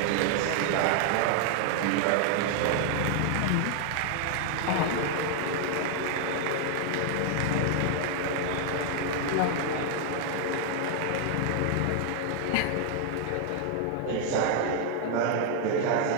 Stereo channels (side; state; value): both; different; correlation 0.00